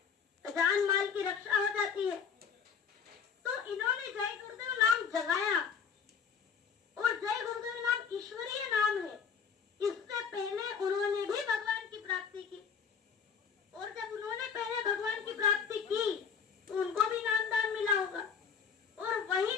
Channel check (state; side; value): quieter; right; 6.8 dB